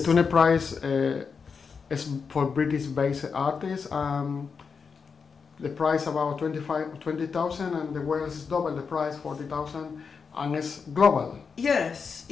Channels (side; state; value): right; quieter; 5.6 dB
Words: Tune Prize is for British-based artists. The price about 20,000, and the Wales is double the price, 40,000, and it's global. Yes,